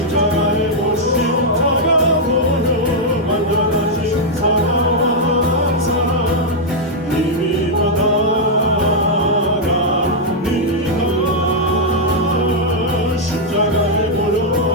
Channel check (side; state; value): both; normal; correlation -0.04